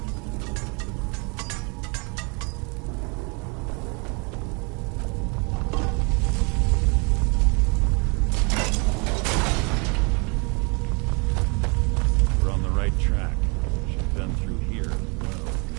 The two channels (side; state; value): left; quieter; 32.3 dB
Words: We're on the right track. Should've been through here.